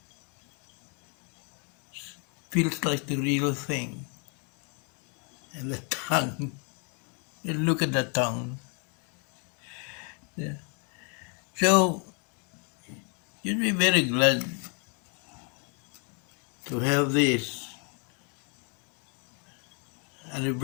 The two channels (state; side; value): quieter; right; 37.8 dB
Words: Feels like the real thing. And the tongue. You look at the tongue. Yeah. So you'd be very glad to have this